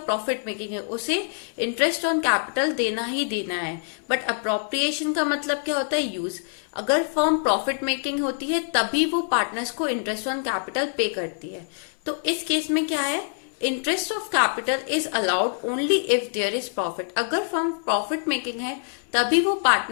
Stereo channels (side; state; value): right; silent; 62 dB below the other